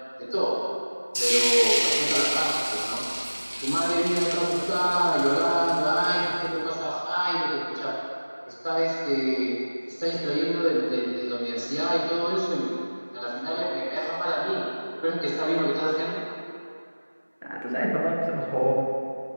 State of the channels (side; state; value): both; inverted; correlation -1.00